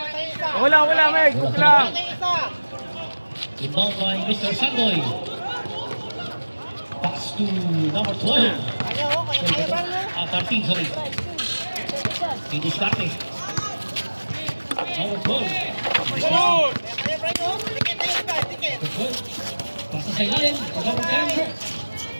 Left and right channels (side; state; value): both; inverted; correlation -1.00